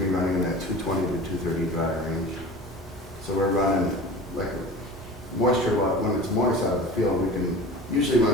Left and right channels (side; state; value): both; normal; correlation 0.37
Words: be running in that 220 to 230 dry range. So we're running like moisture, when it's moist out of the field, we can usually